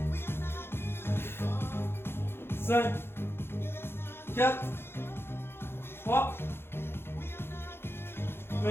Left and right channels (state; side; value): late; right; 0.11 ms